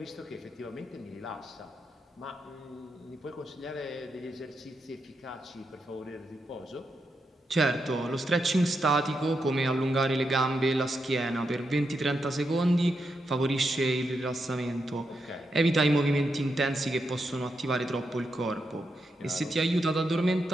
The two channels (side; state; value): both; normal; correlation 0.84